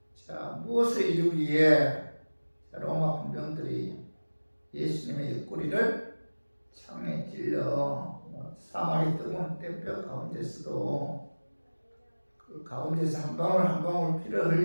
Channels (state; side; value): inverted; both; correlation -1.00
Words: 자, 무엇을 이루기 위해 로마 군병들이 예수님의 옆구리를 창에 찔러 사망의 뜨거운 땜뼈 가운데서도 그 가운데서 한 방울 한 방울 피를